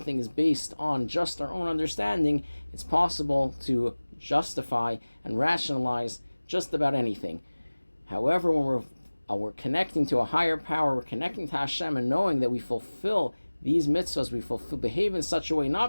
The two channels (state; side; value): inverted; both; correlation -1.00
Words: is based on just our own understanding, it's possible to justify and rationalize just about anything. However, when we're connecting to a higher power, we're connecting to Hashem and knowing that we fulfill these mitzvahs, behave in such a way,